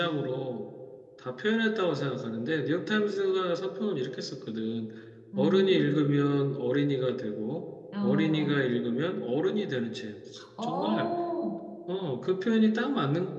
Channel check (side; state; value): both; identical; correlation 1.00